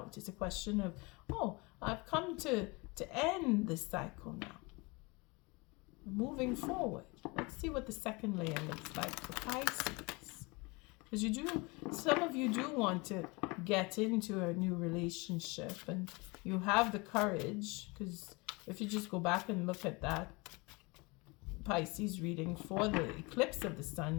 It's a question of, I've come to end this cycle now. Moving forward. Let's see what the second layer looks like for Pisces. Because some of you do want to get into a new relationship, and you have the courage, because if you just go back and look at that Pisces reading for the eclipse of the sun,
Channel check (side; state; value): right; quieter; 26.7 dB